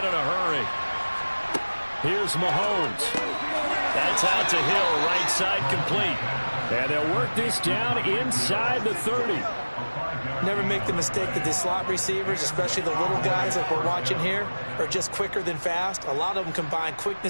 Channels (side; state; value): both; inverted; correlation -1.00